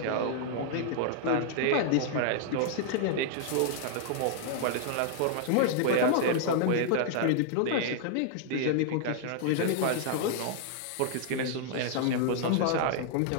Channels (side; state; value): both; different; correlation -0.01